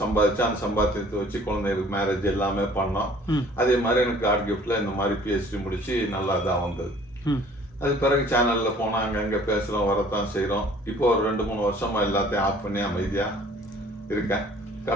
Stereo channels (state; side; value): normal; both; correlation 0.53